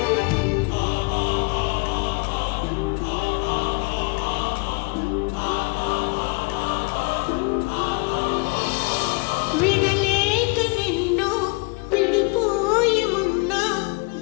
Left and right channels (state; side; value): quieter; right; 29.5 dB